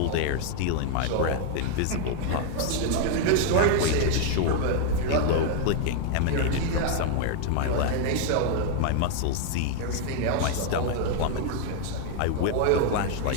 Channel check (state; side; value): different; both; correlation 0.00